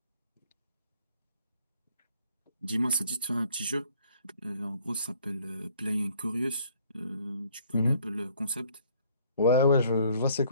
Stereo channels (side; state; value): both; inverted; correlation -0.60